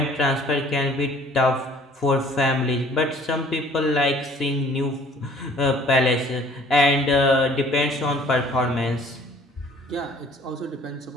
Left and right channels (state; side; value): normal; both; correlation 0.54